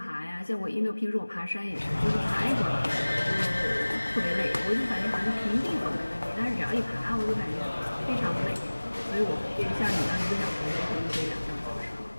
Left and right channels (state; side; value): inverted; both; correlation -1.00